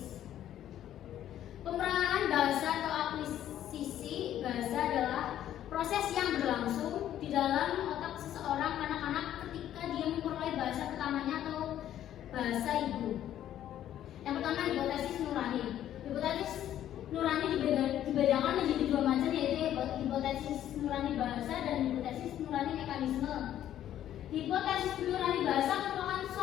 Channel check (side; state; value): right; quieter; 11.6 dB